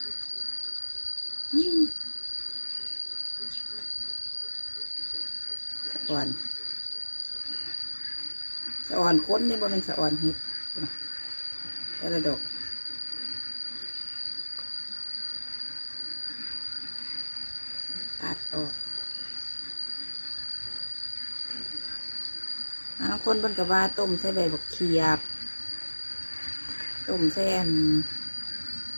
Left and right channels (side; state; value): both; inverted; correlation -1.00